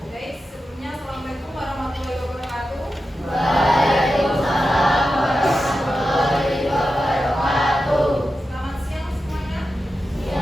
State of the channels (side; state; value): both; normal; correlation 0.91